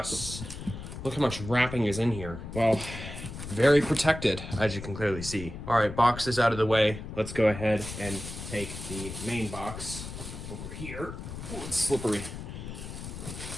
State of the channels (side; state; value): left; noise; rumble, 9 dB below the sound